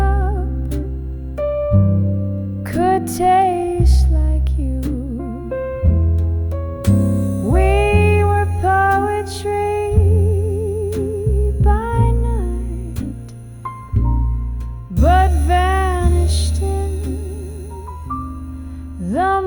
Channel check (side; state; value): both; identical; correlation 1.00